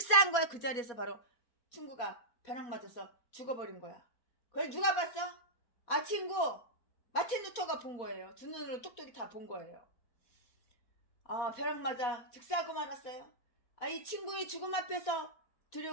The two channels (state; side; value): late; right; 4.2 ms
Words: 거야. 그 자리에서 바로 친구가 벼락 맞아서 죽어버린 거야. 그걸 누가 봤어? 친구 마틴 루터가 본 거예요. 두 눈으로 똑똑히 다 본 거예요. 벼락 맞아 즉사하고 말았어요. 이 친구의 죽음 앞에서